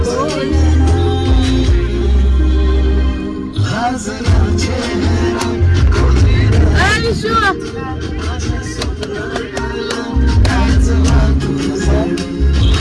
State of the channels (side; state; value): both; identical; correlation 1.00